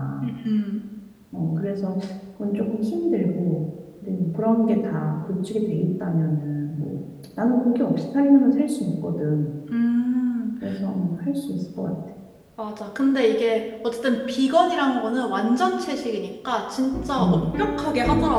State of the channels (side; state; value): both; identical; correlation 1.00